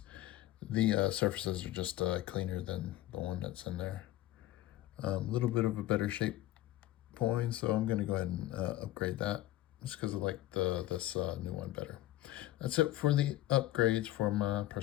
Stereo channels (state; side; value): quieter; right; 15.3 dB